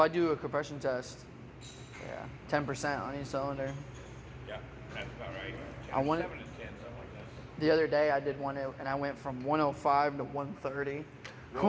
do a compression test, yeah, 10% on each cylinder. Yeah, that's about right. I want it- 7 and 10, something like that. The other day I did one and I went from 105 to 130. I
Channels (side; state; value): both; identical; correlation 1.00